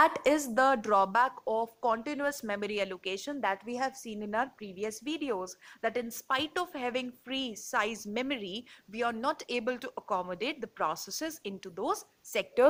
is the drawback of continuous memory allocation that we have seen in our previous videos, that in spite of having free size memory, we are not able to accommodate the processes into those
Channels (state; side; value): identical; both; correlation 1.00